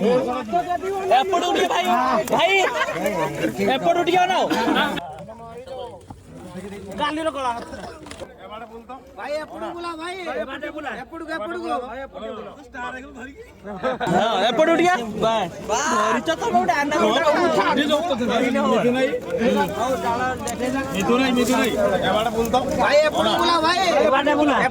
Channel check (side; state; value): both; identical; correlation 1.00